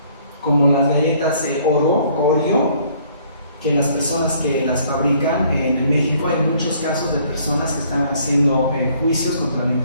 como las galletas Oreo, que las personas que las fabrican en México, hay muchos casos de personas que están haciendo juicios contra la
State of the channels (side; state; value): both; inverted; correlation -0.61